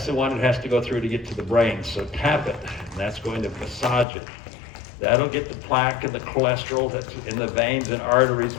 the one that has to go through to get to the brain. So tap it, and that's going to massage it. That'll get the plaque and the cholesterol that's in the veins and arteries,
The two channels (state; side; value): drops out; right; at 4.0 s